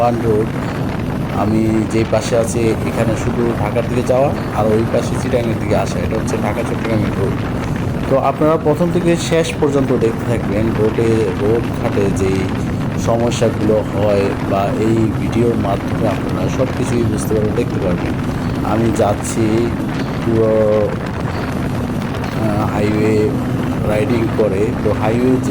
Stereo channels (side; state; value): both; identical; correlation 1.00